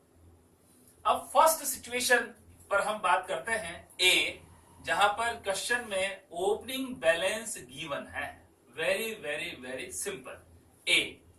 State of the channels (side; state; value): both; identical; correlation 1.00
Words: अब फर्स्ट सिचुएशन पर हम बात करते हैं, ए, जहां पर क्वेश्चन में ओपनिंग बैलेंस गिवन है। Very very very simple. A,